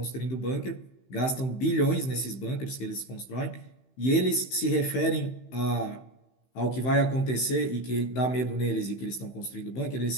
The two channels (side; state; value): right; late; 15 ms